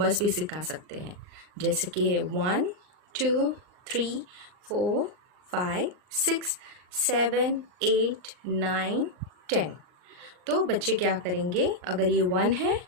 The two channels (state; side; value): late; left; 39 ms